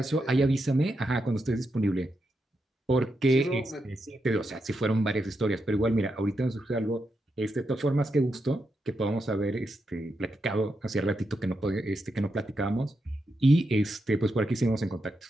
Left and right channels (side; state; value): both; normal; correlation 0.85